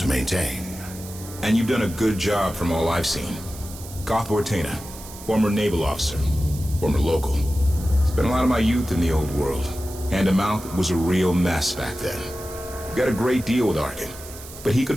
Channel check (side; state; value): right; noise; hiss, 15 dB below the sound